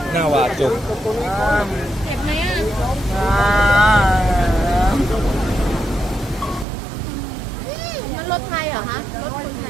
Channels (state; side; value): drops out; left; at 6.7 s